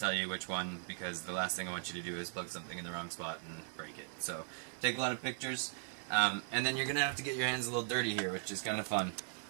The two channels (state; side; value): silent; left; 52 dB below the other